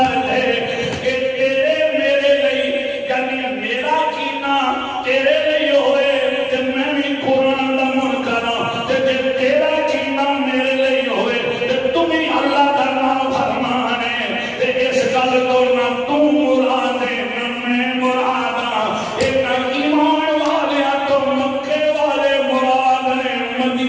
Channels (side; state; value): both; identical; correlation 1.00